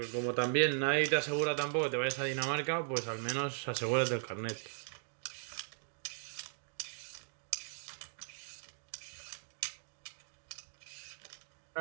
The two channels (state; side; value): silent; left; digital silence